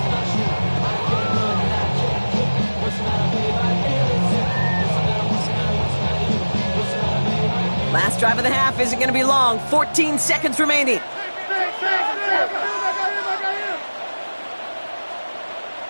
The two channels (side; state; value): both; inverted; correlation -1.00